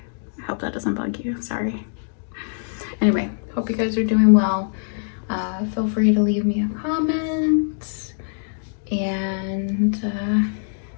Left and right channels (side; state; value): right; silent; digital silence